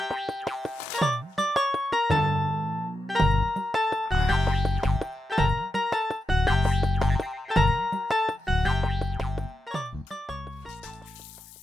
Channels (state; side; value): normal; both; correlation 0.86